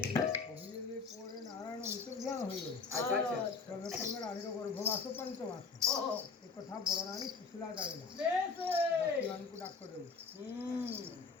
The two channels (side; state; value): right; quieter; 4.7 dB